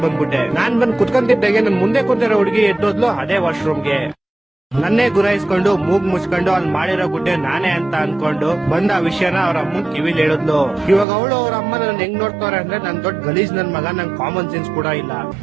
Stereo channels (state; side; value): drops out; left; at 11.1 s